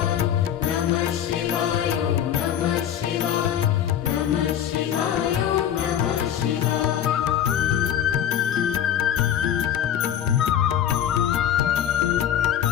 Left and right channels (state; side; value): quieter; right; 10.0 dB